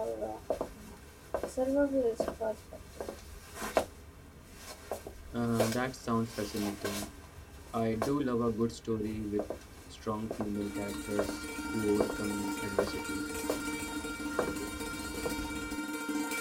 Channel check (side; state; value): both; identical; correlation 1.00